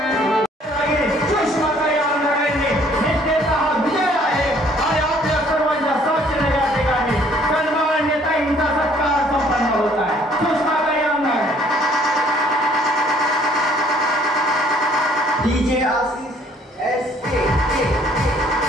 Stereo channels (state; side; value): normal; both; correlation 0.60